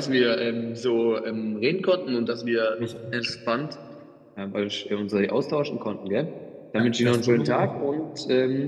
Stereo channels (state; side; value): identical; both; correlation 1.00